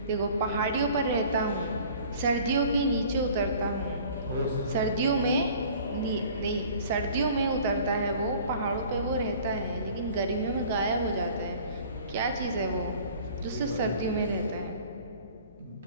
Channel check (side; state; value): both; inverted; correlation -0.49